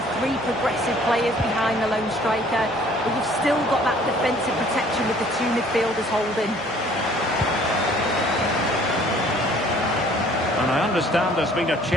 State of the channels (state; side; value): normal; both; correlation 0.55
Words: three progressive players behind the lone striker, but you've still got that defensive protection with the two midfielders holding. And I understand there's been a